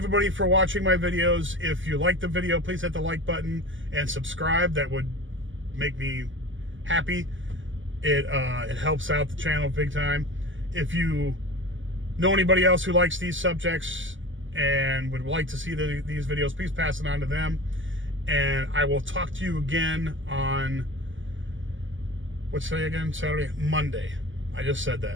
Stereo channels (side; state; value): left; late; 0.56 ms